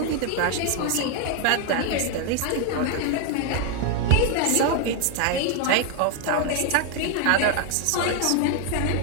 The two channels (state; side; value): different; both; correlation 0.00